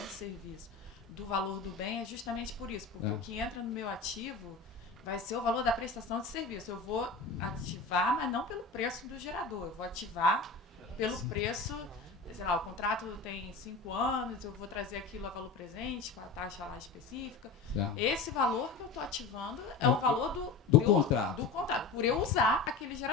serviço do valor do bem é justamente por isso, porque o que entra no meu ativo vai ser o valor da prestação de serviço. Eu vou ativar, mas não pelo preço do gerador, eu vou ativar pelo preço. Sei lá, o contrato tem 5 anos, eu vou trazer aquilo a valor presente, com a taxa lá específica. Esse valor que eu estou ativando é o valor do contrato. Por eu usar aquele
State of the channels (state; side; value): quieter; right; 4.3 dB